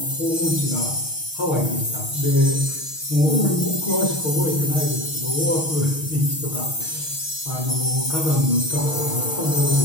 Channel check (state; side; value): late; right; 6.4 ms